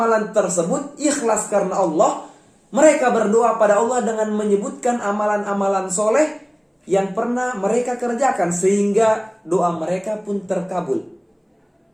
tersebut ikhlas karena Allah. Mereka berdoa pada Allah dengan menyebutkan amalan-amalan soleh yang pernah mereka kerjakan, sehingga doa mereka pun terkabul.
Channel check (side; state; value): both; identical; correlation 1.00